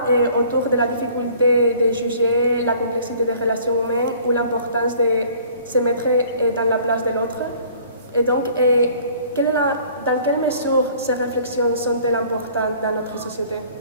autour de la difficulté de juger la complexité des relations humaines ou l'importance de se mettre dans la place de l'autre. Et donc, dans quelle mesure ces réflexions sont-elles importantes dans notre société?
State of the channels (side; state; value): both; inverted; correlation -0.53